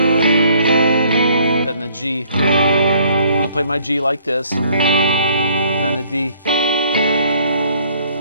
the G. I'm going to play my G like this. Then the D.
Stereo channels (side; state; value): both; inverted; correlation -0.61